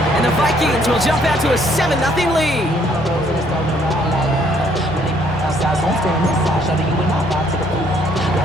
And the Vikings will jump out to a 7-0 lead.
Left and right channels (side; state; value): both; normal; correlation 0.66